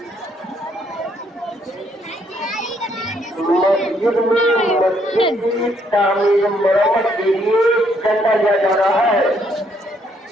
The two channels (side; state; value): both; normal; correlation 0.70